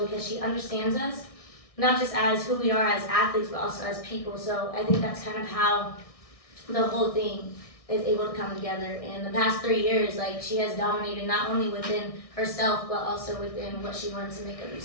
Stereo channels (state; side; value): late; right; 1.6 ms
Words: she understands us, not just as who we are as athletes, but also as people. So I think that's kind of how the whole thing is able to come together. In the past 3 years, like, she has dominated not only within herself, but also within what she wanted to make of